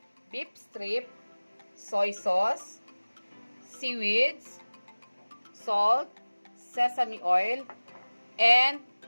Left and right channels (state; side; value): inverted; both; correlation -1.00